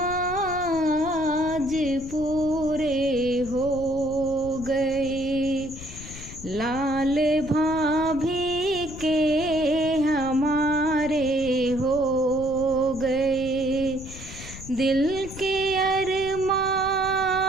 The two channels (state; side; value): noise; left; rumble, 13 dB below the sound